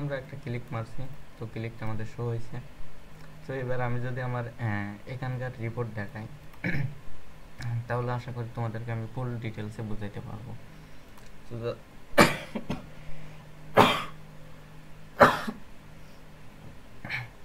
একটা ক্লিক মারছি, তো ক্লিকটা আমাদের শো হয়েছে। সো এবার আমি যদি আমার এখানকার রিপোর্ট দেখাই, তাহলে আশা করি তোমাদেরকে আমি ফুল ডিটেলসে বুঝাইতে পারবো। তো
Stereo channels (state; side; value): identical; both; correlation 1.00